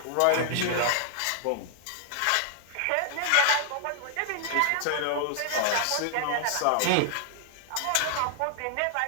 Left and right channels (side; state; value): both; different; correlation 0.00